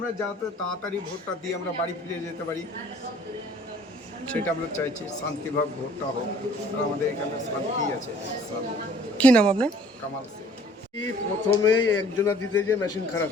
যাতে তাড়াতাড়ি ভোটটা দিয়ে আমরা বাড়ি ফিরে যেতে পারি, সেটা আমরা চাইছি। শান্তিভাবে ভোটটা হোক, আর আমাদের এখানে শান্তি আছে। কি নাম আপনার? কামাল সিং। প্রথমে একজনা দিতে যে মেশিন খারাপ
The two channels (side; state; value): both; normal; correlation 0.55